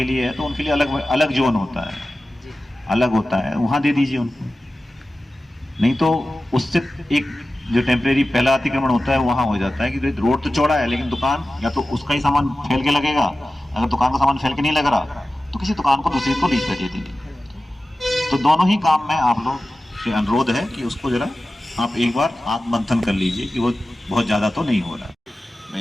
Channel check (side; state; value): both; normal; correlation 0.95